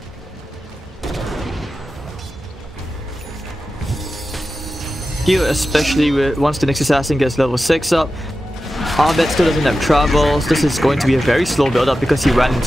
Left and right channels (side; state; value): both; normal; correlation 0.93